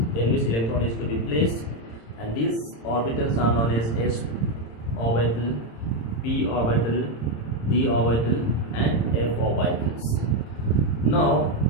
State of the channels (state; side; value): late; right; 26 ms